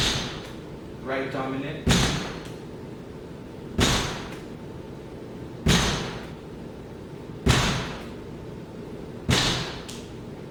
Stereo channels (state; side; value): identical; both; correlation 1.00